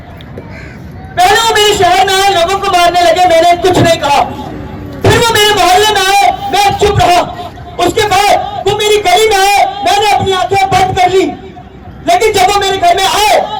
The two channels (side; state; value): both; identical; correlation 1.00